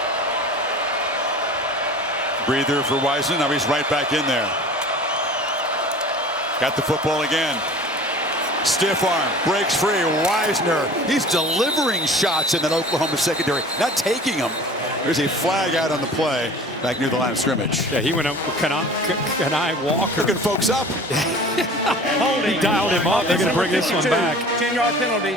Breather for Wisner. Now he's right back in there. Got the football again. Stiff arm, breaks free. Wisner, he's delivering shots in that Oklahoma secondary, not taking them. There's a flag out on the play back near the line of scrimmage. Yeah, he went up with Kenai Walker. Looking folks up. He dialed him up. They're going to bring this one back. 10-yard penalty,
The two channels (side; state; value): both; normal; correlation 0.42